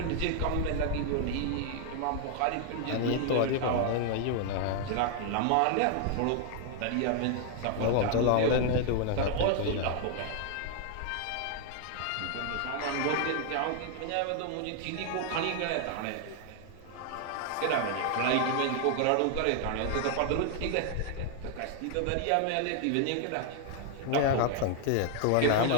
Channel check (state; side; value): different; both; correlation 0.00